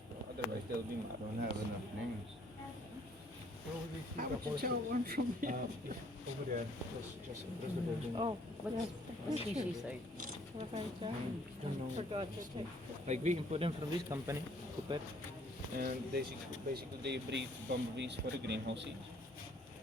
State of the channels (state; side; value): normal; both; correlation 0.62